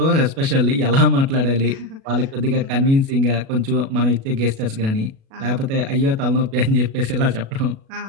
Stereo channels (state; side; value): late; left; 37 ms